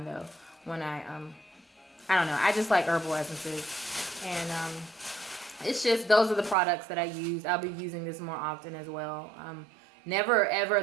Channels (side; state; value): left; drops out; at 6.6 s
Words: though. When I don't know. I just like herbal essences, and it's just those are the products that I use. I'll be using this more often as well. Never ever